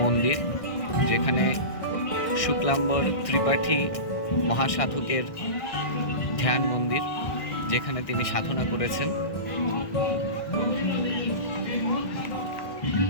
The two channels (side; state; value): right; late; 1.6 ms